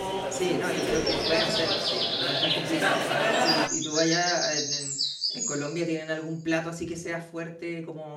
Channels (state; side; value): identical; both; correlation 1.00